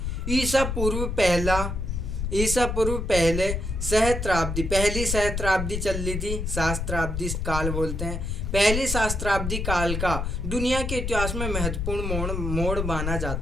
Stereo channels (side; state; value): left; noise; rumble, 2 dB below the sound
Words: ईसा पूर्व पहले सहस्त्राब्दी, पहली सहस्त्राब्दी चल रही थी, सहस्त्राब्दी काल बोलते हैं। पहली सहस्त्राब्दी काल का दुनिया के इतिहास में महत्वपूर्ण मोड़ माना